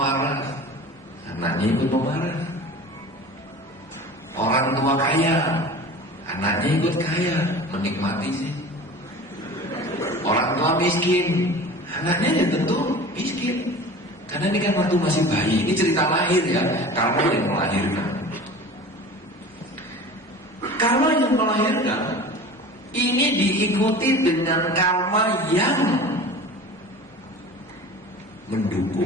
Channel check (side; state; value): both; normal; correlation 0.38